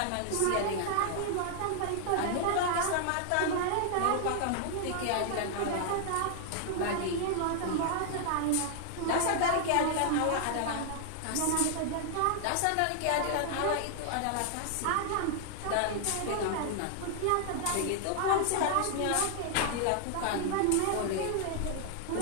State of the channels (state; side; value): different; both; correlation 0.00